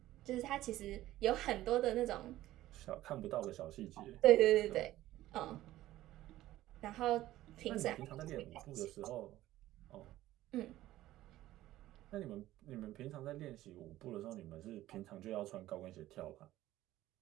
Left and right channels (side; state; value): left; quieter; 15.1 dB